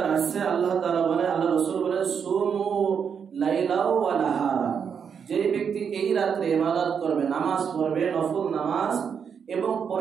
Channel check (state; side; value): quieter; left; 7.0 dB